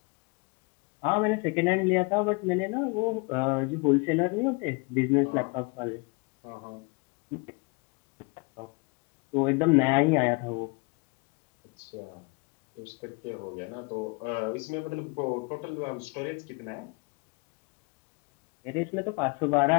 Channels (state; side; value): quieter; right; 30.4 dB